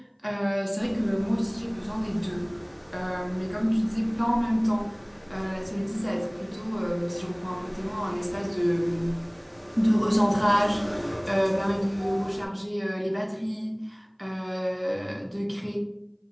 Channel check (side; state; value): both; identical; correlation 1.00